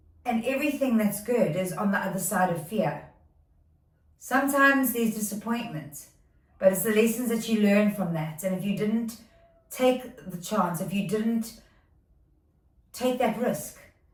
and everything that's good is on the other side of fear. Sometimes there's disappointment, but it's the lessons that you learn from that. And if you didn't take the chance, if you didn't take that risk,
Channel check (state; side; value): identical; both; correlation 1.00